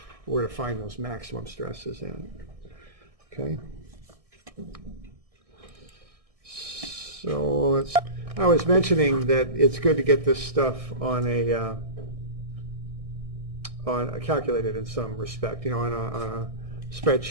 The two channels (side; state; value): left; late; 1.6 ms